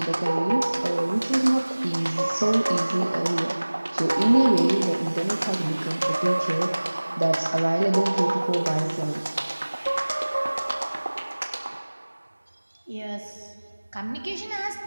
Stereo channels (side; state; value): both; inverted; correlation -1.00